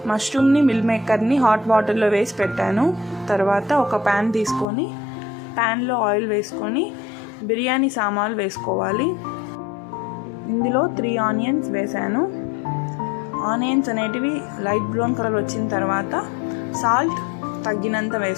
మష్రూమ్ని మిల్ మేకర్ని హాట్ వాటర్లో వేసి పెట్టాను. తర్వాత ఒక ప్యాన్ తీసుకొని ప్యాన్లో ఆయిల్ వేసుకొని బిర్యానీ సామాన్లు వేసుకోవాలి. ఇందులో 3 ఆనియన్స్ వేసాను. ఆనియన్స్ అనేటివి లైట్ బ్రౌన్ కలర్ వచ్చిన తర్వాత సాల్ట్ తగ్గినంత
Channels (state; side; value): drops out; right; at 4.7 s